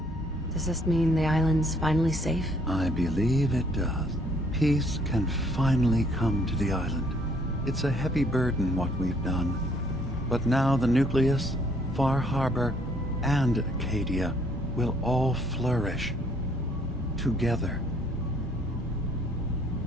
Does this mean the island's finally safe? I believe it does. Peace can finally come to the island. It's a heavy burden what we've done. But now the Nucleus, Far Harbor, and Acadia will all flourish. Together.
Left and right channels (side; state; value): both; normal; correlation 0.64